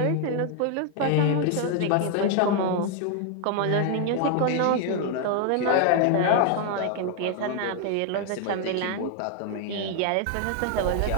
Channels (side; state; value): both; different; correlation 0.00